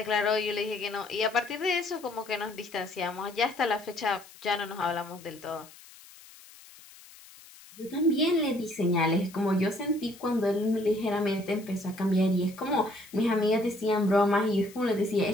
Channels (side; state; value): left; noise; hiss, 21 dB below the sound